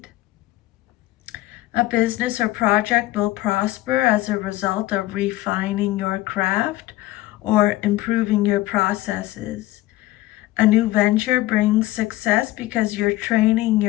A business or project will prosper as a result of refining your craft or improving your processes. A new venture brings success because you're training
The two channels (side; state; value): right; quieter; 17.0 dB